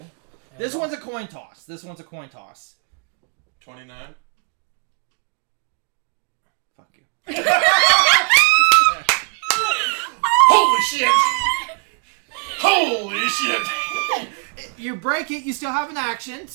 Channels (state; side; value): quieter; left; 36.9 dB